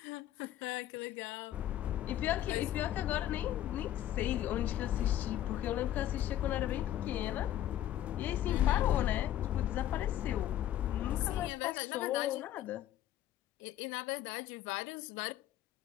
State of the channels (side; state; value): right; quieter; 12.4 dB